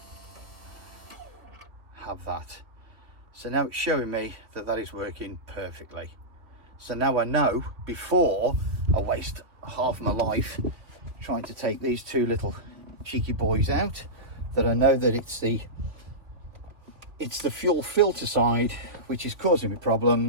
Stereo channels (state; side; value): late; left; 3.0 ms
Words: have that. So now it's showing me that that is working perfectly. So now I know, before I waste half my life trying to take these two little cheeky boys out, that I know that it's the fuel filter side which is causing me